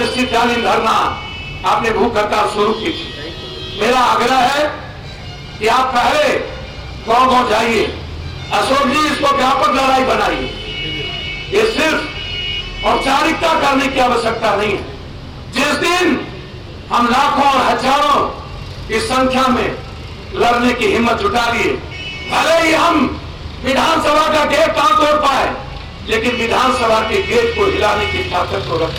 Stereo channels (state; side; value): identical; both; correlation 1.00